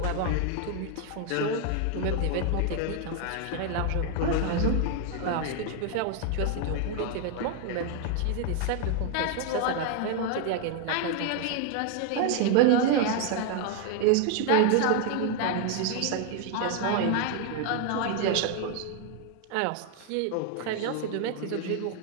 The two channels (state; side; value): different; both; correlation 0.00